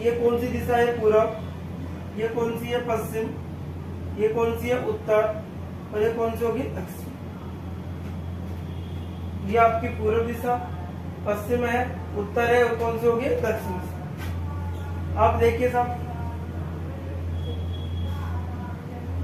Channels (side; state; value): left; noise; hum, 28 dB below the sound